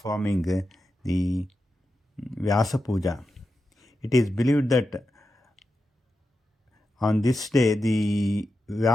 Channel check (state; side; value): normal; both; correlation 0.90